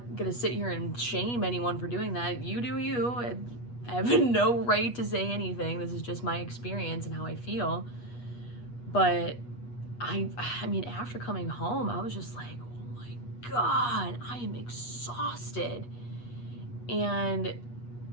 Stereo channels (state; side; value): late; right; 8.3 ms